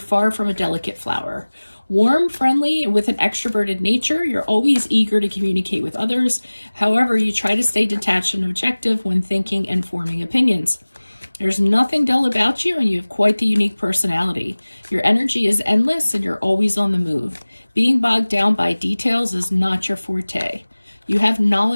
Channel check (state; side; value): inverted; both; correlation -1.00